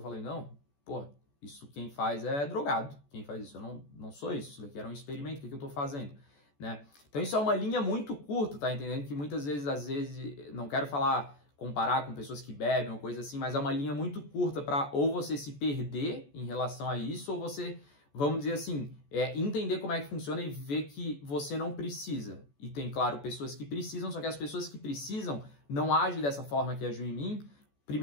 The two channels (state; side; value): late; right; 14 ms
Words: falei, não, pô, isso quem faz é drogado, quem faz isso, eu não sou isso daqui era um experimento, o que eu tô fazendo, né? Então isso é uma linha muito curta, tá entendendo? Que muitas vezes, às vezes, não quero comparar com pessoas que bebem ou coisa assim, mas é uma linha muito curta para ou você se perder em relação a isso, ou você, vamos dizer assim, entender como é que funciona e ver que você não precisa. E tem, claro, pessoas que precisam, só que as pessoas que precisam não agem dessa forma que agiu em mim.